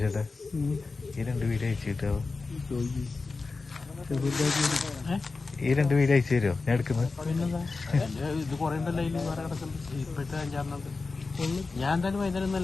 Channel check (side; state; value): right; quieter; 4.0 dB